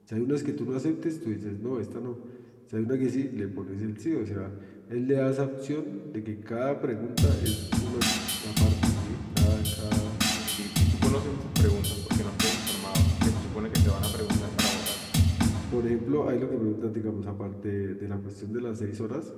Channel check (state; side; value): identical; both; correlation 1.00